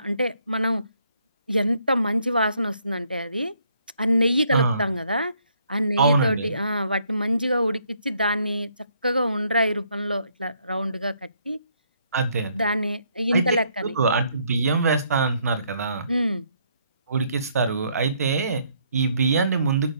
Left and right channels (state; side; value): inverted; both; correlation -0.69